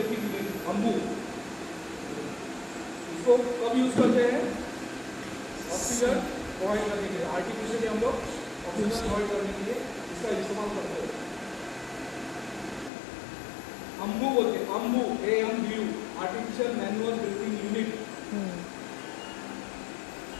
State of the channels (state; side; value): drops out; right; at 12.9 s